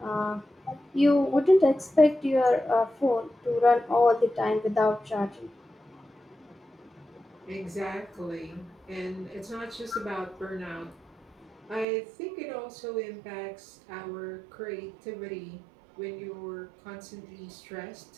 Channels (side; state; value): left; drops out; at 11.9 s